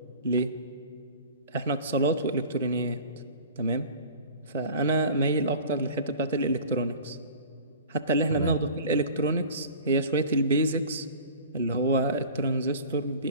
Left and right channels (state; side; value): inverted; both; correlation -0.41